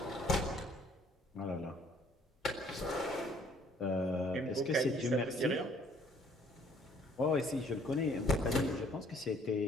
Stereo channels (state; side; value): normal; both; correlation 0.60